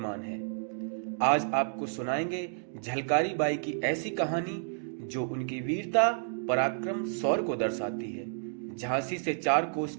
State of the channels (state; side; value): silent; left; digital silence